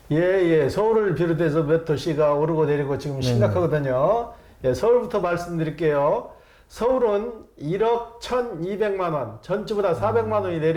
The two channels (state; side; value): identical; both; correlation 1.00